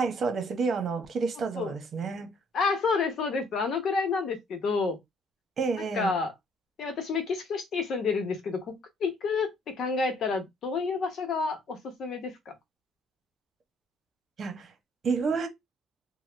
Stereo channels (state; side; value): normal; both; correlation 0.63